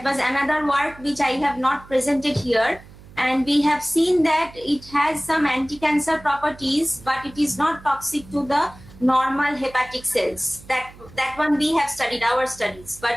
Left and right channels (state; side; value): noise; right; hum, 21 dB below the sound